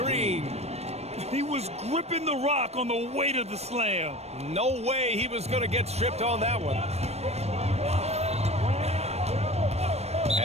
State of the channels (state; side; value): late; left; 0.31 ms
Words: He was gripping the rock on the weight of the slam. No way he was going to get stripped on that one.